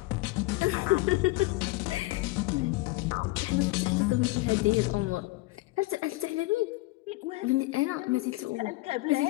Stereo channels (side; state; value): right; quieter; 21.3 dB